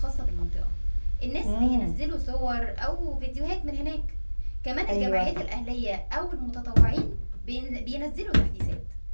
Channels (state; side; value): inverted; both; correlation -1.00